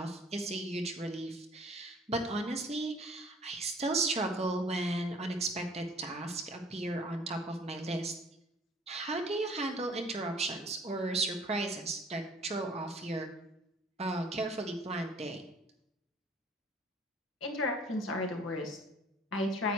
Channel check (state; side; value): normal; both; correlation 0.53